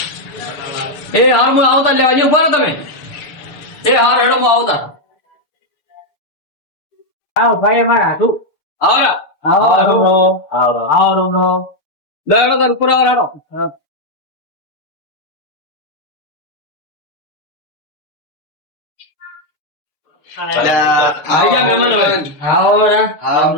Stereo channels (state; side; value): late; right; 6.9 ms